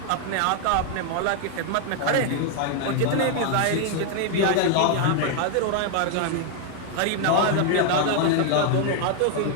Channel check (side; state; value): both; different; correlation 0.00